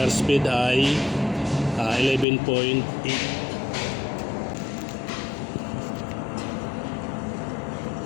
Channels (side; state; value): right; drops out; at 2.2 s